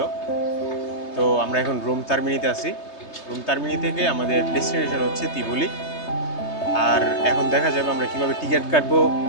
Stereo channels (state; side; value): late; right; 3.2 ms